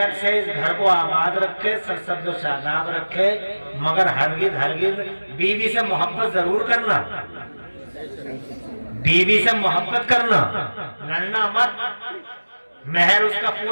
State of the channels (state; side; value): inverted; both; correlation -1.00